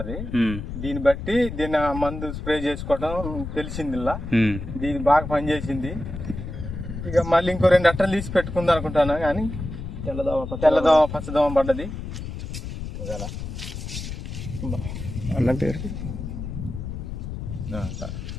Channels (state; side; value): noise; left; rumble, 7 dB below the sound